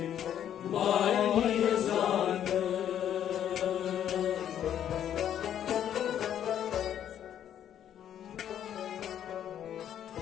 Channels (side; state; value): right; quieter; 10.1 dB